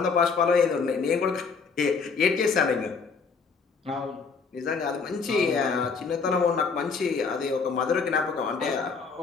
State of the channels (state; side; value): quieter; right; 5.1 dB